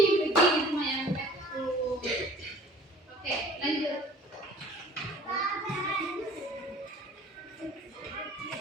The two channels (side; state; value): both; normal; correlation 0.49